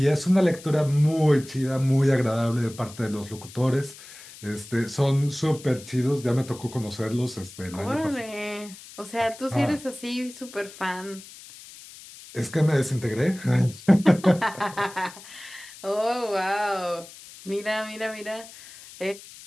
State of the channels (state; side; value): noise; left; hiss, 18 dB below the sound